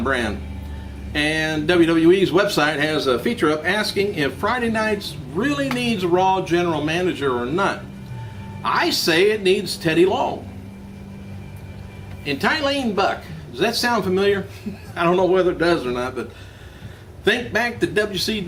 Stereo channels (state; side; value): identical; both; correlation 1.00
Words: brand. And WWE's website has a feature up asking if Friday nights really needs a Raw General Manager or not. I say it needs Teddy Long. And Tylene Buck, does that sound familiar? I don't know whether it does or not, but think back to